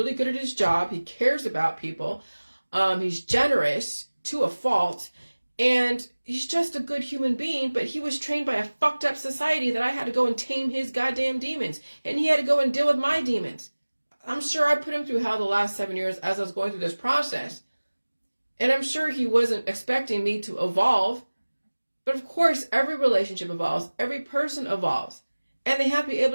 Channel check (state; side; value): inverted; both; correlation -1.00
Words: good at his job. He cares about people. He's generous to a fault. And he's just a good human being, but he was trained by a fucked up society that I had to go and tame his goddamn demons. And he had to go and deal with my demons. I'm sure I put him through hell the last 7 years as I was going through this process. And I'm sure he wasn't expecting me to evolve. But of course, every relationship evolves. Every person evolves. And they have to be